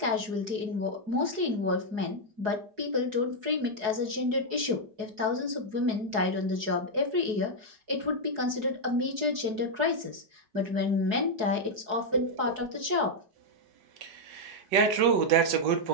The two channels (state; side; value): late; left; 4.7 ms